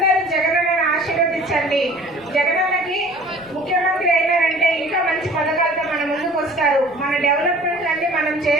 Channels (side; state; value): right; noise; rumble, 28 dB below the sound